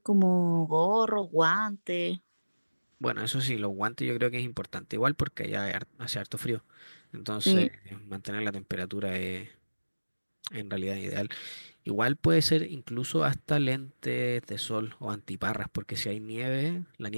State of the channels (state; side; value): inverted; both; correlation -1.00